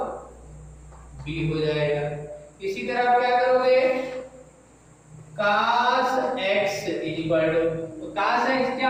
B हो जाएगा। इसी तरह आप क्या करोगे cos x तो cos x क्या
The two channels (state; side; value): identical; both; correlation 1.00